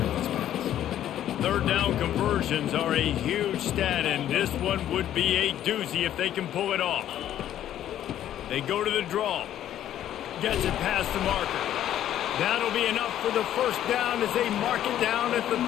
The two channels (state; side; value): quieter; right; 11.5 dB